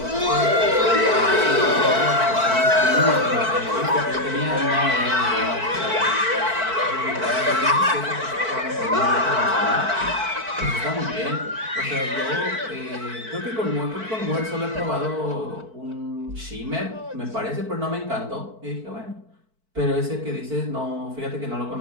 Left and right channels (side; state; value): left; late; 4.5 ms